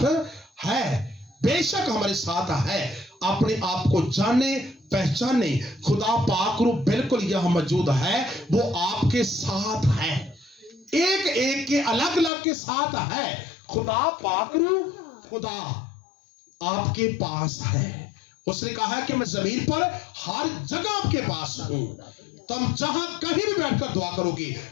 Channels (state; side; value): drops out; right; at 12.3 s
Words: ہے. بے شک ہمارے ساتھ ہے. اپنے آپ کو جانے پہچانے, خدا پاک روح بالکل یہاں موجود ہے, وہ آپ کے ساتھ ہے, ایک ایک کے الگ الگ کے ساتھ ہے. خدا پاک روح خدا آپ کے پاس ہے. اس نے کہا کہ میں زمین پر ہر جگہ آپ کے پاس ہوں, تم جہاں کہیں بھی بیٹھ کر دعا کرو گی